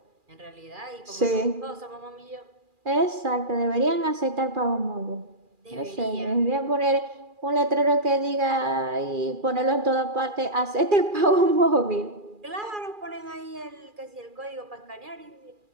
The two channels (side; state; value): left; late; 2.4 ms